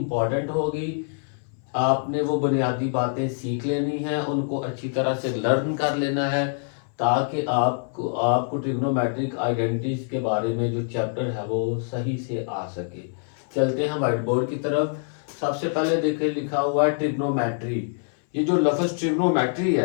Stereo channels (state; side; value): silent; right; 60 dB below the other